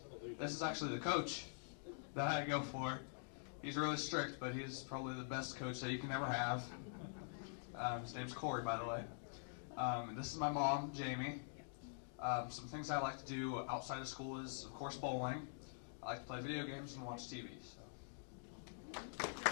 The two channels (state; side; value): silent; right; digital silence